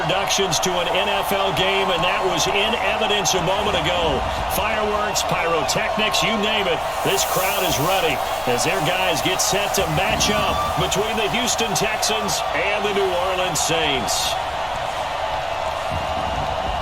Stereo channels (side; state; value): both; identical; correlation 1.00